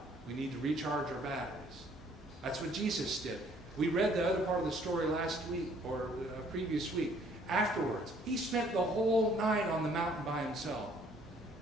We need to recharge our batteries. That's what Jesus did. We read the other part of the story last week, or previous week. Afterwards, he spent the whole night on the mountain by himself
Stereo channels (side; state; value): both; normal; correlation 0.61